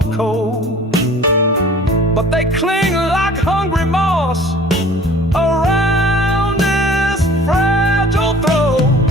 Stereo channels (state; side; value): normal; both; correlation 0.48